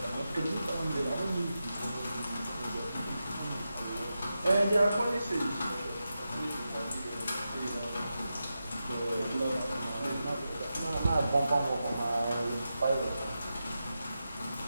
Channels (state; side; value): inverted; both; correlation -0.90